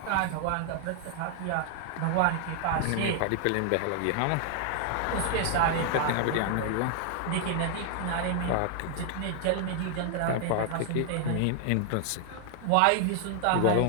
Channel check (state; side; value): different; both; correlation 0.00